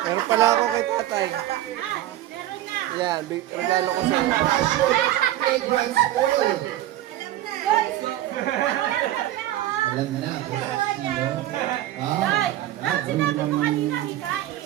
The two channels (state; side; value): quieter; left; 13.8 dB